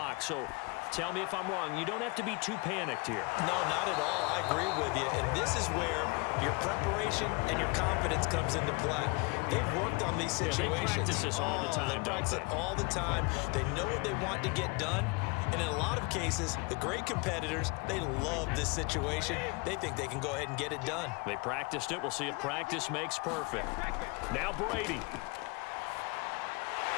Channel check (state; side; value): quieter; right; 27.8 dB